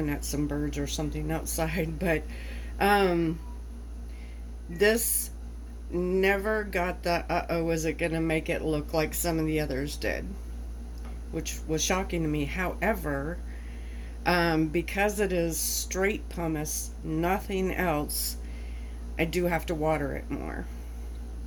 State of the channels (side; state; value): both; identical; correlation 1.00